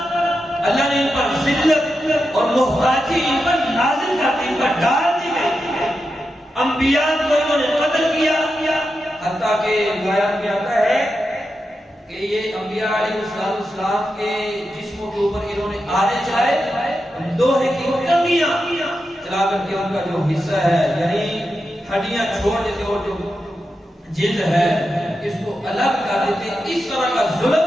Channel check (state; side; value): normal; both; correlation 0.88